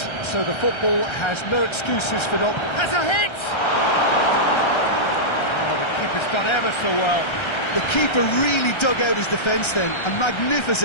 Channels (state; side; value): late; right; 1.3 ms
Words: so the football has no excuses for not... Has a hit! Oh, the keeper's done ever so well. The keeper really dug out his defence then, a